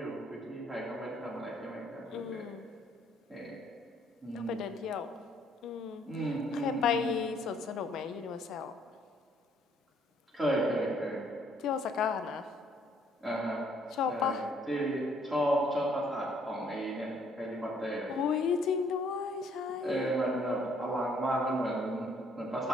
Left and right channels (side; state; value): both; normal; correlation 0.65